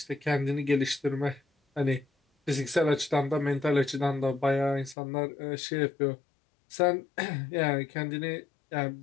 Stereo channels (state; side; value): drops out; right; at 5.0 s